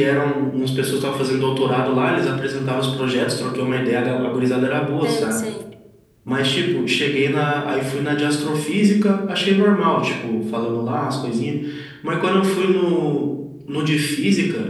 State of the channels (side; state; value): both; identical; correlation 1.00